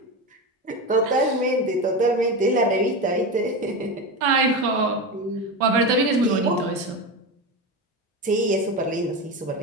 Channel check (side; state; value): both; normal; correlation 0.20